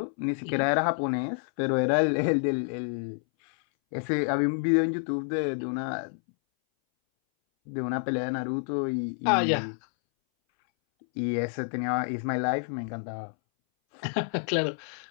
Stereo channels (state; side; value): silent; right; 59 dB below the other